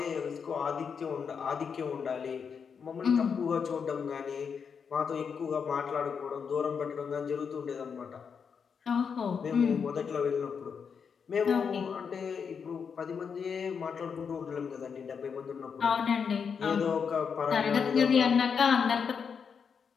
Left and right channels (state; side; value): quieter; right; 6.4 dB